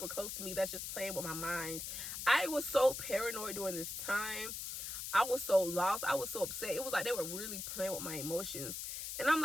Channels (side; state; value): left; noise; hiss, 5 dB below the sound